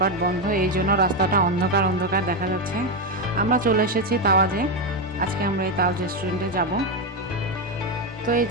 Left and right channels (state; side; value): normal; both; correlation 0.08